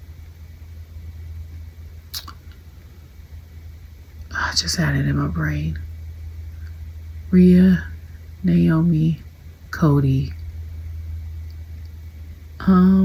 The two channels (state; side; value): identical; both; correlation 1.00